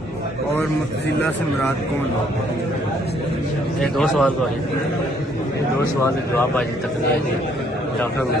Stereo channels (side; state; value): both; normal; correlation 0.65